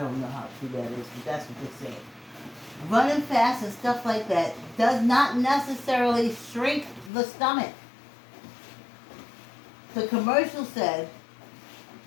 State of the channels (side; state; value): right; drops out; at 7.1 s